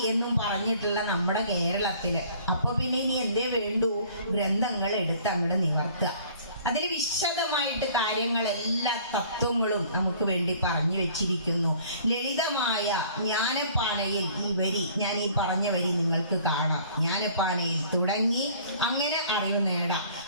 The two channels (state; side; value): inverted; both; correlation -0.53